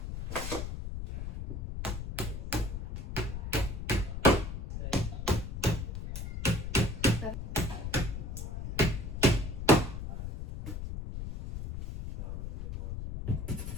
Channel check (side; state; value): left; noise; rumble, 5 dB below the sound